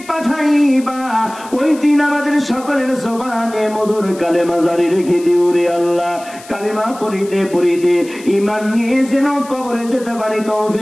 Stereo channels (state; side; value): noise; left; hiss, 19 dB below the sound